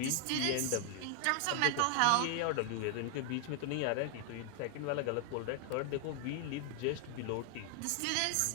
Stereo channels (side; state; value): both; different; correlation 0.00